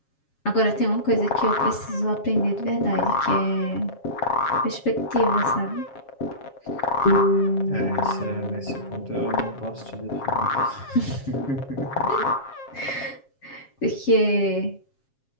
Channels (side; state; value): right; late; 7.4 ms